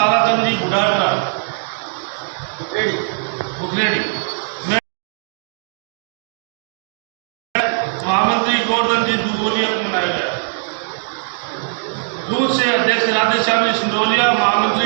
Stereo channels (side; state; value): left; silent; 66 dB below the other